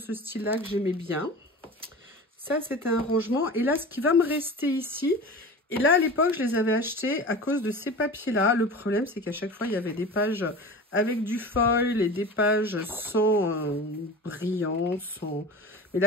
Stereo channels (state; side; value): normal; both; correlation 0.33